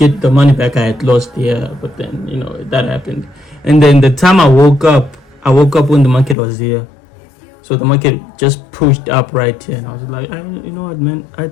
the money back I had lost here. But then, you know, that happened. And then the time I woke up when the market was here. So the market just pushed up right here, and I was like, you know what, man, I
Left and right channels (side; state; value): right; drops out; at 6.4 s